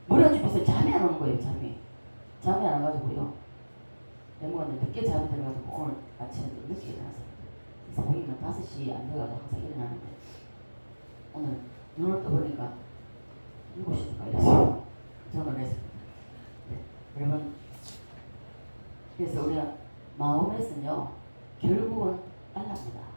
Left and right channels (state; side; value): inverted; both; correlation -1.00